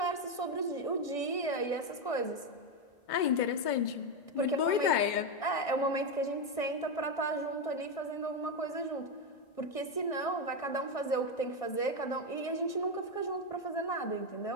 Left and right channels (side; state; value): right; late; 1.6 ms